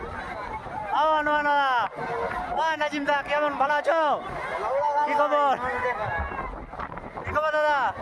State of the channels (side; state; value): both; identical; correlation 1.00